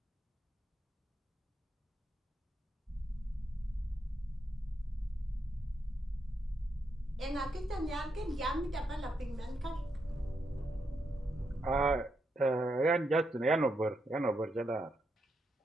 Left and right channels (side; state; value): both; normal; correlation 0.82